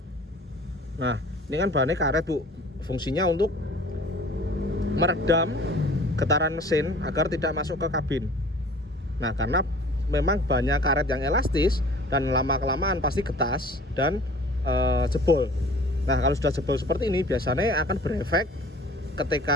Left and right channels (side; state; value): both; normal; correlation 0.47